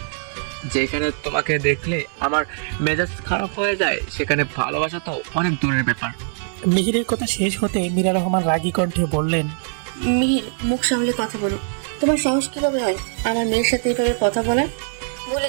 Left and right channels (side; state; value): left; silent; 58 dB below the other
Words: যেখানে তোমাকে দেখলে আমার মেজাজ খারাপ হয়ে যায়, সেখানে ভালোবাসা তো অনেক দূরের ব্যাপার। মিহিরের কথা শেষ হতে মীরা রহমান রাগী কণ্ঠে বললেন, মিহির, মুখ সামলে কথা বলো। তোমার সাহস কিভাবে হয় আমার মেয়ের সাথে এইভাবে কথা বলার? বলে